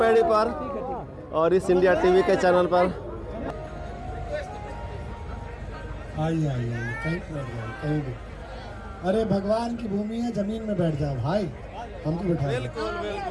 पर और इस इंडिया टीवी के चैनल पर। आइए कहीं भी। अरे भगवान की भूमि है, जमीन में बैठ जाओ भाई, हमको बिठा बैठ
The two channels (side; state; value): both; identical; correlation 1.00